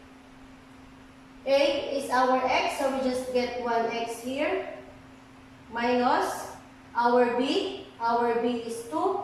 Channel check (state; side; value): identical; both; correlation 1.00